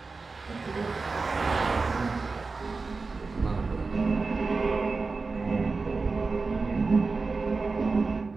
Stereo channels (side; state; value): left; quieter; 4.1 dB